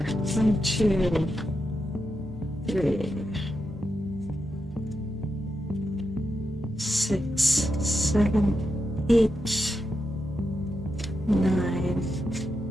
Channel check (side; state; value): both; normal; correlation 0.86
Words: 1, 2, 3, 6, 7, 8, 9,